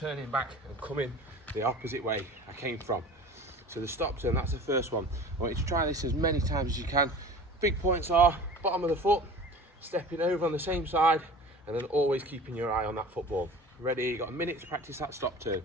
back and coming the opposite way I came from. So the stop turn, that's the first one. I want you to try this as many times as you can. Big points are bottom of the foot, stepping over on the same side, and then always keeping your eye on that football. Ready, you've got a minute to practice that stop turn.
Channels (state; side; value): normal; both; correlation 0.40